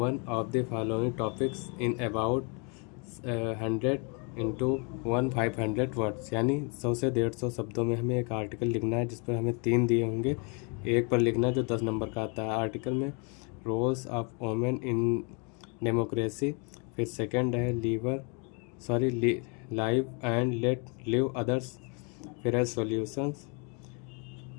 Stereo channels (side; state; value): right; quieter; 34.7 dB